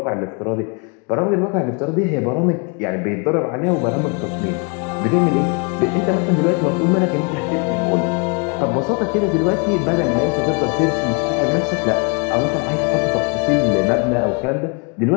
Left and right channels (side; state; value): right; quieter; 34.2 dB